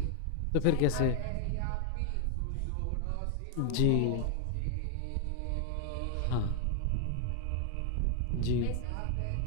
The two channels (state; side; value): different; both; correlation 0.00